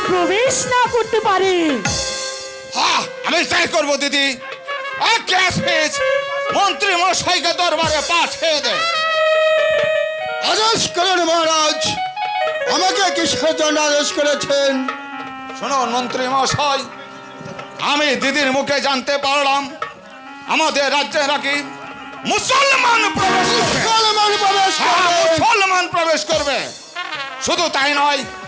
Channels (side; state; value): both; identical; correlation 1.00